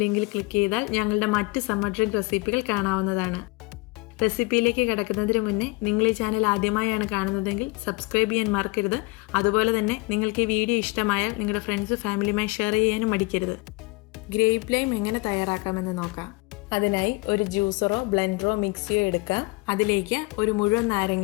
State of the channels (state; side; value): quieter; right; 24.9 dB